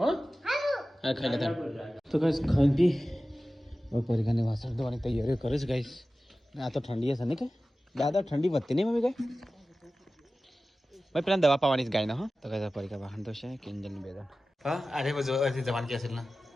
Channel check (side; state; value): both; normal; correlation 0.95